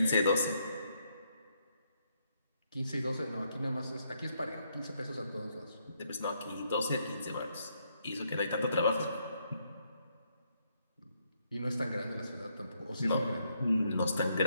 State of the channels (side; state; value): both; inverted; correlation -0.75